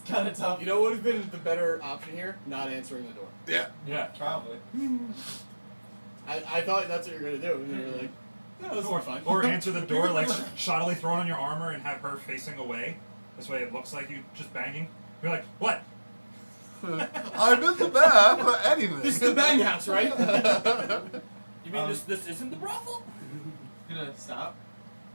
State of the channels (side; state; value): both; inverted; correlation -1.00